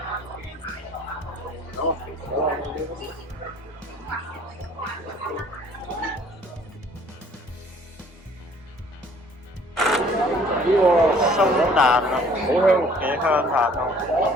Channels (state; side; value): normal; both; correlation 0.56